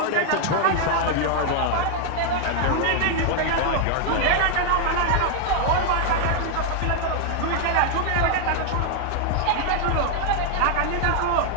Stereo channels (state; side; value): different; both; correlation 0.00